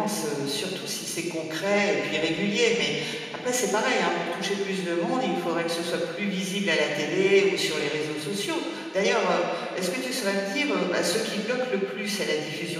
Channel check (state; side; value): identical; both; correlation 1.00